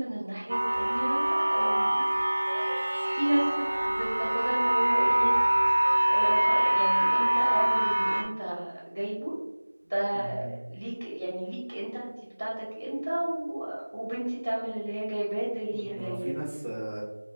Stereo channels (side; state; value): both; inverted; correlation -1.00